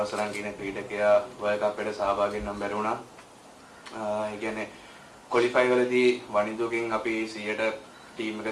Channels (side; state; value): both; identical; correlation 1.00